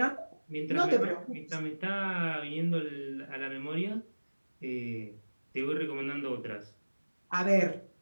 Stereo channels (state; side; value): inverted; both; correlation -1.00